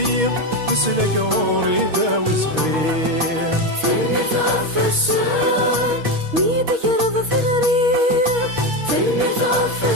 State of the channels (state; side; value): late; left; 6.4 ms